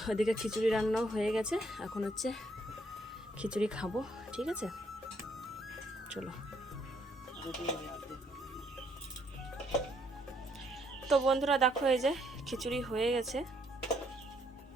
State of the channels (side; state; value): both; normal; correlation 0.70